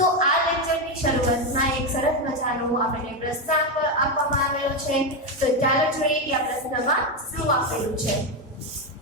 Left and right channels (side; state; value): both; normal; correlation 0.08